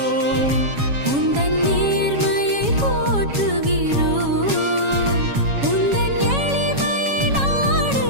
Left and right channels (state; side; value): late; left; 7.2 ms